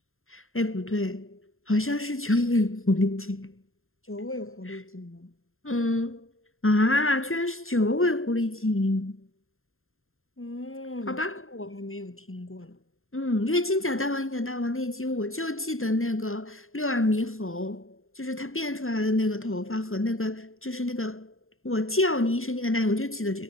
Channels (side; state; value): right; late; 0.61 ms